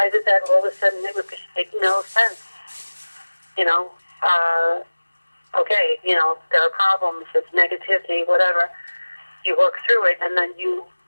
did that all of a sudden, it would just make no sense? You know, okay, you know, there are problems, it's negativity, whatever. You work through it and then you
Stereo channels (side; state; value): both; inverted; correlation -1.00